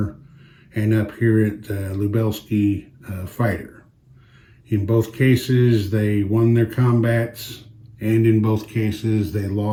and up here at Lubelski, fighter. In both cases, they won their combats, and in both cases, they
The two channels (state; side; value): identical; both; correlation 1.00